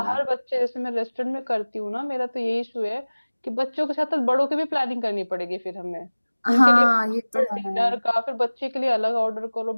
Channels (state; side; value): inverted; both; correlation -1.00